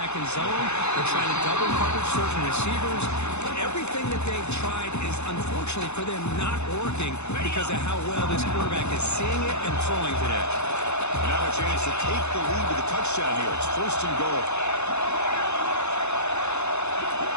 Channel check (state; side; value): late; right; 0.81 ms